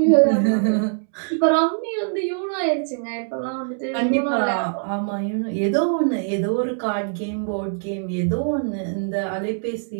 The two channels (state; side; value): silent; left; 64 dB below the other